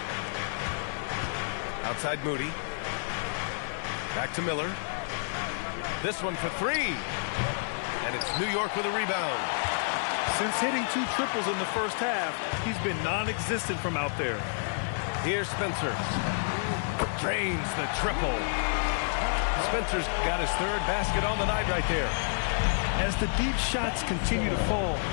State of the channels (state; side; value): silent; right; digital silence